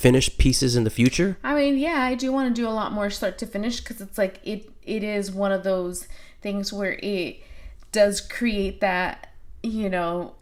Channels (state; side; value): identical; both; correlation 1.00